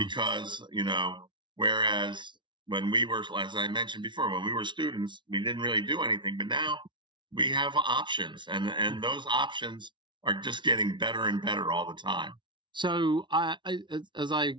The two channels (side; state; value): left; late; 0.23 ms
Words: whereas when we were, as I mentioned before, when we were students, we didn't really do anything, but now we have options, and those options are just getting better and better all the time. So as I